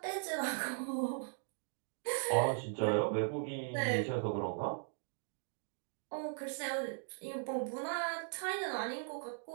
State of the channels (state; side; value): silent; left; digital silence